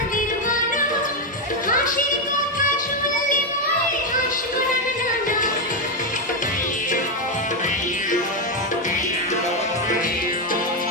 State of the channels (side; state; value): both; normal; correlation 0.05